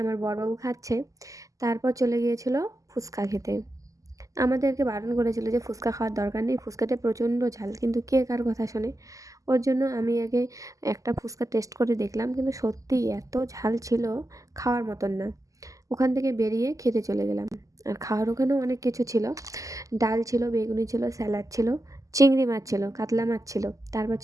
বড়বাবু খাচ্ছে। তারপর চলে গিয়েছিল ফুচকা খেতে। আমাদেরকে বারণ করেছিল যে ফুচকা খাওয়ার দরকার নেই, ফুচকাতে প্রচণ্ড ঝাল, কিন্তু কে কার কথা শোনে। ওর জন্য আমি আগে একটা ফুচকা টেস্ট করে দেখলাম, কিন্তু সত্যিই এত ঝাল ছিল, খাওয়ার মতন না। ওখান থেকে বেরিয়ে খেতে চলে গেলাম। আর খাওয়ার ওখানেও অনেক কিছু ছিল। ডাল ছিল, বেগুনি ছিল, স্যালাড ছিল, চিংড়ি মাছ ছিল, কাতলা মাছ ছিল, তারপর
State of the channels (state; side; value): late; left; 0.16 ms